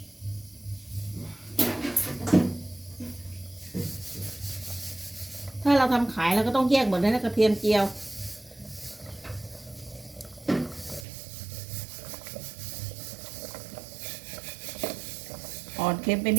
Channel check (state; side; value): drops out; left; at 11.1 s